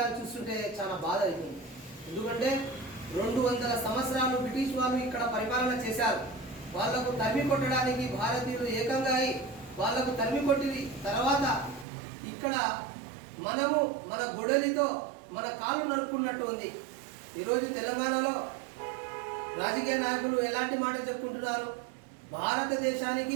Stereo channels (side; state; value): left; drops out; at 11.9 s